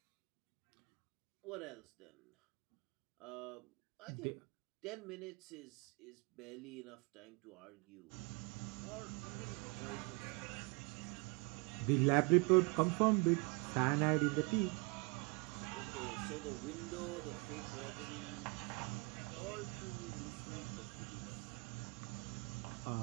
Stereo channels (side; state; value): left; quieter; 30.0 dB